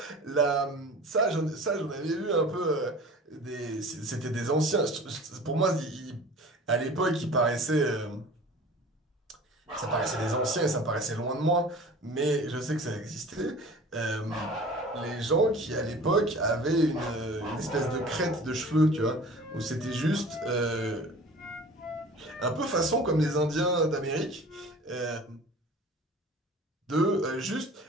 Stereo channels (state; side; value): normal; both; correlation 0.42